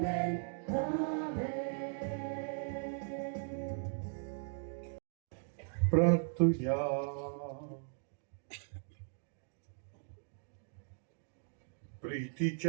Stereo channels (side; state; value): left; silent; digital silence